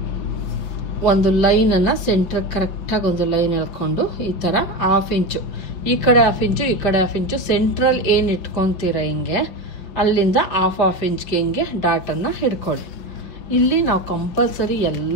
ಒಂದು ಲೈನನ್ನು ಸೆಂಟ್ರಿಗೆ ಕರೆಕ್ಟಾಗಿ ಒಂದು ಲೈನ್ ಎಳ್ಕೊಂಡು ಈ ಥರ 1/2 ಇಂಚು ಈ ಕಡೆ 1/2 ಇಂಚು ಈ ಕಡೆ 1/2 ಇಂಚು ಸೆಂಟ್ರಲ್ ಏನು ಇಟ್ಕೊತೀರ ಹಿಂಗೆ ಅಲ್ಲಿಂದ 1/2 ಇಂಚ್ಗೆ ಹಿಂಗೆ ಡಾಟನ್ನು ಹಿಡ್ಕೊಳ್ಳಿ. ಇಲ್ಲಿ ನಾವು ಕಂಪಲ್ಸರಿ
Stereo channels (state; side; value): late; right; 5.2 ms